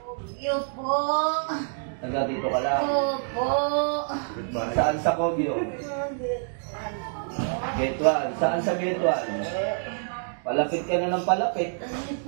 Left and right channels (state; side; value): silent; left; digital silence